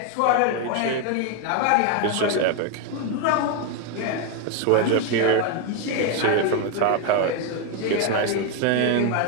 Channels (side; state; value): both; different; correlation 0.01